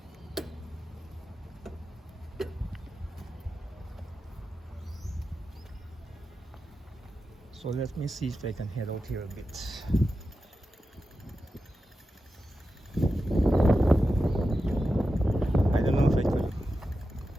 So let me see if I can head out here a bit. I don't know if I could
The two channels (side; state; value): both; normal; correlation 0.91